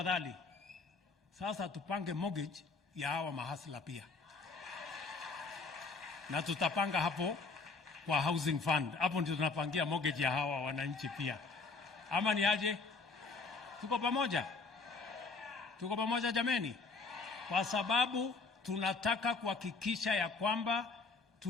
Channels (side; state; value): right; quieter; 4.2 dB